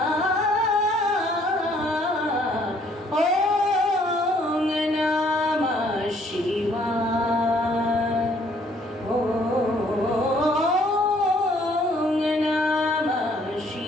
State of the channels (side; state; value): both; normal; correlation 0.62